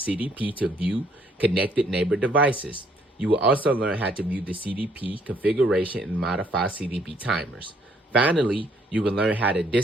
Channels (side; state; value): both; normal; correlation 0.66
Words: to view connected neighbor devices. You will also learn how to view the CDP configuration and modify CDP timers. Finally, you will learn how to